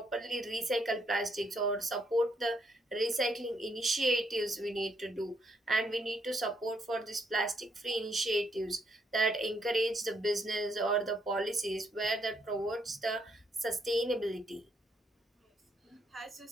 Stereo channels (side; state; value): both; normal; correlation 0.74